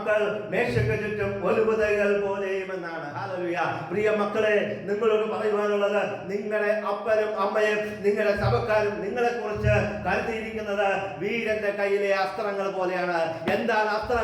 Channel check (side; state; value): both; identical; correlation 1.00